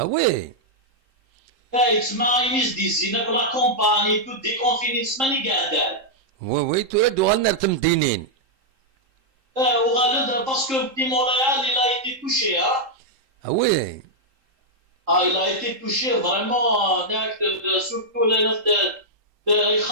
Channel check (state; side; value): late; left; 3.7 ms